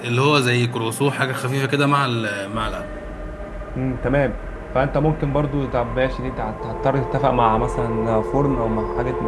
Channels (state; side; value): identical; both; correlation 1.00